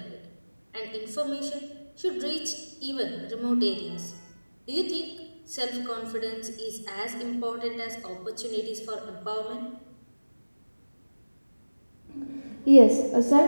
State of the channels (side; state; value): both; inverted; correlation -1.00